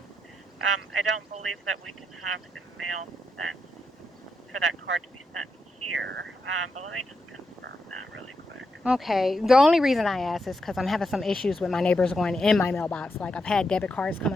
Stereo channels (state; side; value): normal; both; correlation 0.83